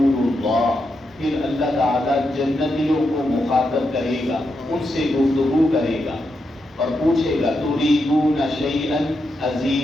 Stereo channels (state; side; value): normal; both; correlation 0.84